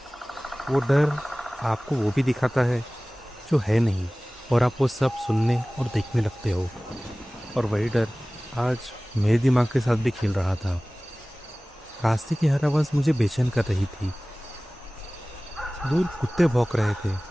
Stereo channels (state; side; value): normal; both; correlation 0.98